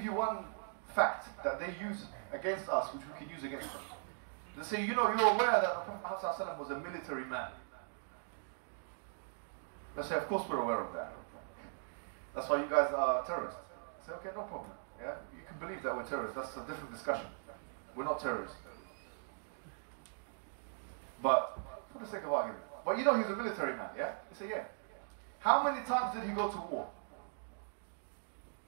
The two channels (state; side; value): silent; left; digital silence